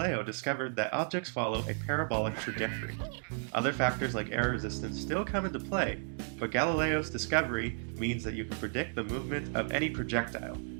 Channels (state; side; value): silent; left; 55 dB below the other